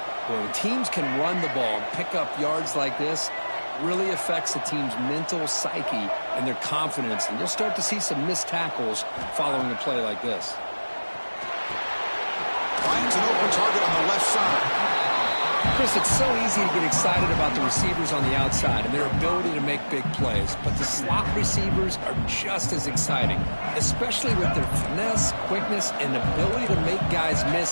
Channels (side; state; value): both; inverted; correlation -1.00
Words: But when teams can run the ball and pick up yards like this, really affects the team's mental psyche and their confidence. And you'll start to see some missed tackles following a play like this. Finds an open target on the left side. Chris, it's so easy to get excited about the receivers on the outside and their ability to make big plays. But the slot receivers are just as exciting, especially with their finesse, quickness, and ability to make guys